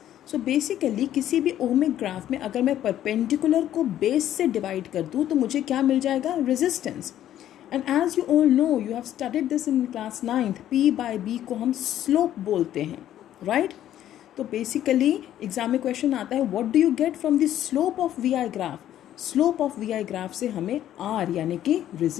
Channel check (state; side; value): quieter; right; 11.8 dB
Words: सो बेसिकली किसी भी ओमिक ग्राफ में अगर मैं परपेंडिकुलर को बेस से डिवाइड कर दूँ तो मुझे क्या मिल जाएगा, resistance. And as you all know, you have studied this in class 9th, P by B को हम स्लोप बोलते हैं. राइट. तो बेसिकली एग्जाम में क्वेश्चन आता है, what do you get from the slope of V I graph. Slope of V I graph से हमें R यानी कि